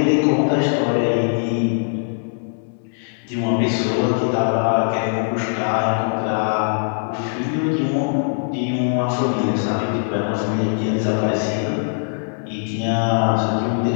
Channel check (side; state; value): right; silent; 64 dB below the other